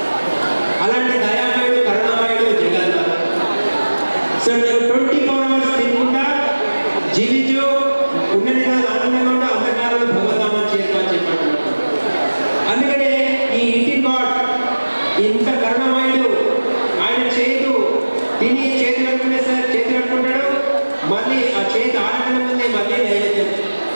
అలాంటి దయామయుడు కరుణామయుడు జగన్నాథ్. సో 24 hours తినకుండా జీవించు ఉన్నది కాదు ఆనందంగా ఉంటే అంతకాలంలో భగవద్ధామని చేరుకోని చెప్పాడు. అందుకనే ఈ ఈటింగ్ గాడ్ ఇంత కరుణామయుడు ఆయన చేతు తిని చేతులు కట్టుకునే సార్ చేతులు పట్టుకుంటాడు, మళ్ళీ ఆ చేతి ఆడటం ముందే మళ్ళీ నైవేద్యం,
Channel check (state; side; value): inverted; both; correlation -1.00